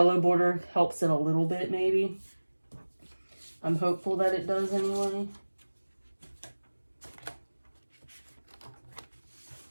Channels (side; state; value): both; inverted; correlation -1.00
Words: border helps it a little bit, maybe. I'm hopeful that it does anyway.